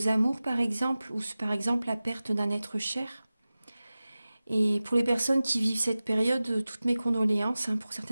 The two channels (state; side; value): inverted; both; correlation -0.97